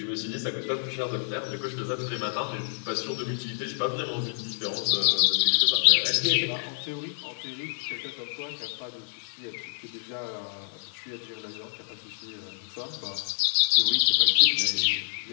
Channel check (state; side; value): silent; right; 59 dB below the other